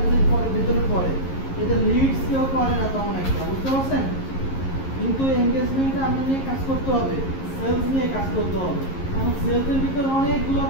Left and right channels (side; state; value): right; late; 11 ms